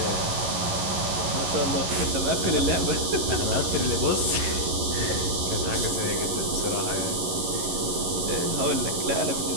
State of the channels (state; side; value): late; left; 11 ms